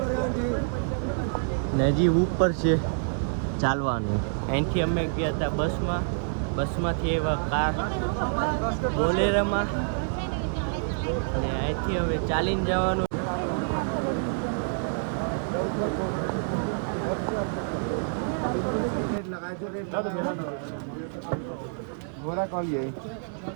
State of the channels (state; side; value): silent; left; 60 dB below the other